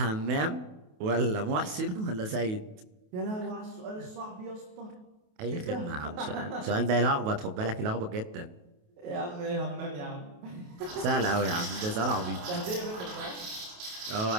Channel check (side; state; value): left; late; 28 ms